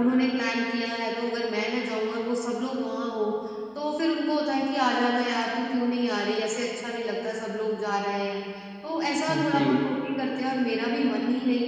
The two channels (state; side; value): identical; both; correlation 1.00